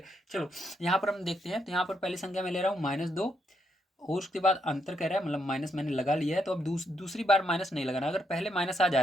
चलो यहाँ पर हम देखते हैं। तो यहाँ पर पहली संख्या में ले रहा हूँ -2, और उसके बाद अंतर कह रहा है, मतलब माइनस मैंने लगा लिया है। तो अब दूसरी बार माइनस नहीं लगाना। अगर पहले माइनस आ जा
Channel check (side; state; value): both; normal; correlation 0.78